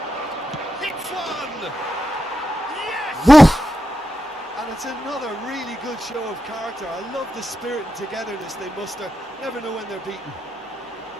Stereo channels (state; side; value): normal; both; correlation 0.88